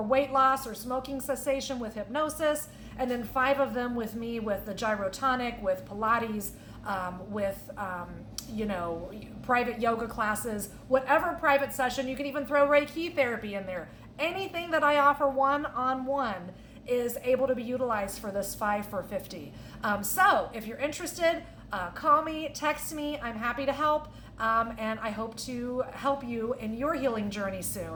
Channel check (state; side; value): identical; both; correlation 1.00